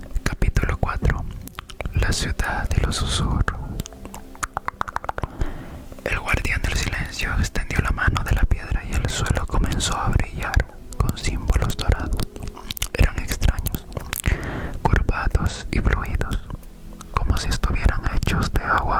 Capítulo 4. La ciudad de los susurros. El guardián del silencio extendió la mano de la piedra y el suelo comenzó a brillar con símbolos dorados. Eran extraños, curvados y fluidos, como si estuvieran hechos de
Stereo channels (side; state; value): both; identical; correlation 1.00